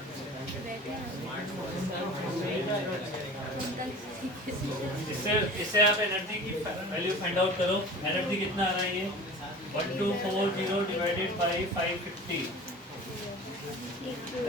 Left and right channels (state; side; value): normal; both; correlation 0.39